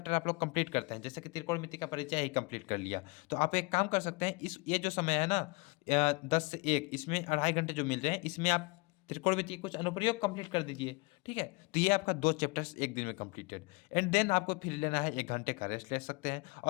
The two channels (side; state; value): right; quieter; 26.8 dB